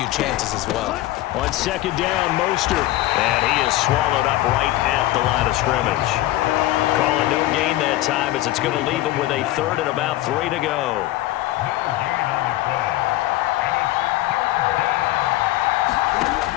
chances as well. On 2nd down, Mostert. And he is swallowed up right at the line of scrimmage. Calling no gain that time as it's going to leave him with a 3rd and about 3 to go.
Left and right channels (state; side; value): quieter; right; 16.3 dB